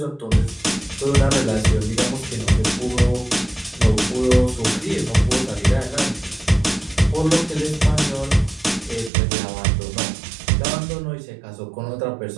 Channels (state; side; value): drops out; left; at 9.1 s